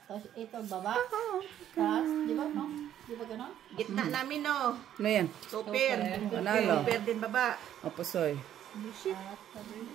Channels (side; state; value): left; quieter; 10.9 dB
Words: Tapos ito, baba. Tapos, di ba, no? Di ba gano'n? Gitna namin, oh. Ano yan? Super. Panalo. Super din baba. O, pusoy.